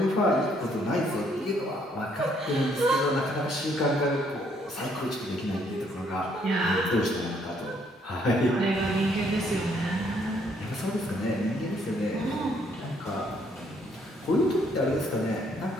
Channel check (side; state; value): both; normal; correlation 0.68